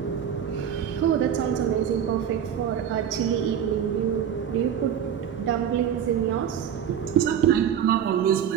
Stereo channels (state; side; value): quieter; left; 9.0 dB